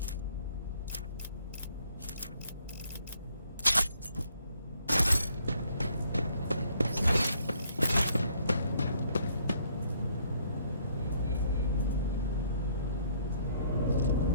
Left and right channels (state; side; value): inverted; both; correlation -0.66